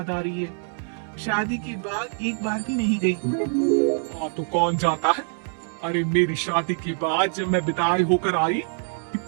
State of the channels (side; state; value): left; silent; 62 dB below the other